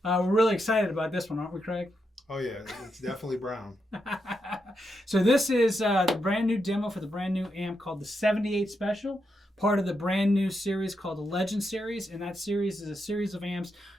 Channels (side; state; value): both; normal; correlation 0.84